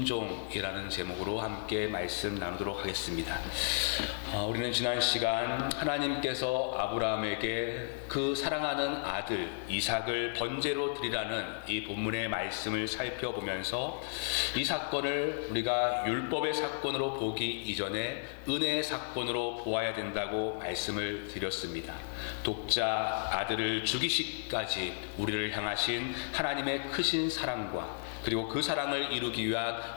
제목으로 함께 말씀 나누도록 하겠습니다. 우리는 지난 시간 하나님께서 아브라함에게 그 사랑하는 아들 이삭을 번제로 드리라는 이 본문의 말씀을 살펴보면서 이 사건을 우리가 율법의 사건으로 보기 이전에 은혜의 사건으로 보아야 된다고 말씀을 드렸습니다. 독자 아들을 죽이시기까지 우리를 향하신 하나님의 크신 사랑과 그리고 그 사랑을 이루기 위한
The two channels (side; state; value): right; silent; digital silence